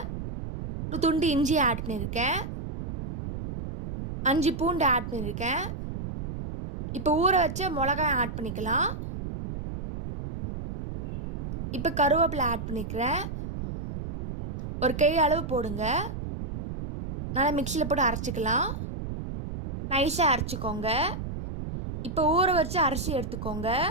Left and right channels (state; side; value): noise; right; rumble, 6 dB below the sound